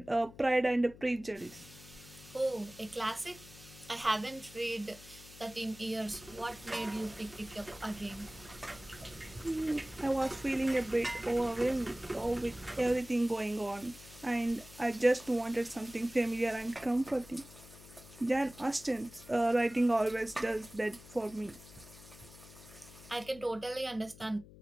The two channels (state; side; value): noise; left; hum, 19 dB below the sound